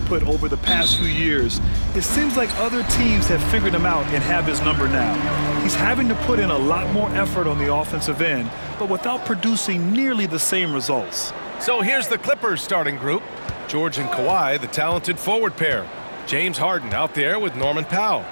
over the past few years, it seems like other teams have figured him out and have his number now. He's having to put in a lot more effort on the offensive end, but without producing nearly the same results. So here's the Clippers starting group. George and Kawhi, the talented forward pair. James Harden out there with Norman Powell.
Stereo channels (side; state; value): both; inverted; correlation -1.00